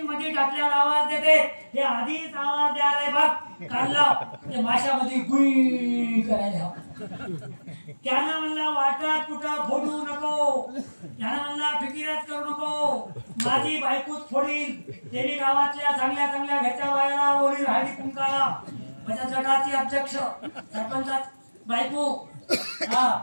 मध्ये टाकल्यावर आवाज देते. हे आधीच आवाज द्यायला बघ काढला, ते माशामध्ये गुई करायला. त्यानं म्हणला वाटात कुठं फोडू नको, त्यानं म्हणला फिकिरात करू नको, माझी बायकोच फोडील. त्यांनी गावातल्या चांगल्या चांगल्या घरच्या बायाला ओळी हळदी कुंकाला, बचत गटाची अध्यक्ष सरपंचात बायको, हा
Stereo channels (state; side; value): inverted; both; correlation -1.00